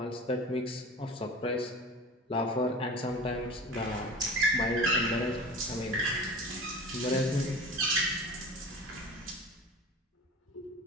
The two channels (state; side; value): normal; both; correlation 0.36